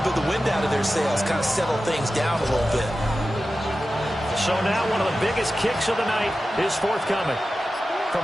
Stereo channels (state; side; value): normal; both; correlation 0.93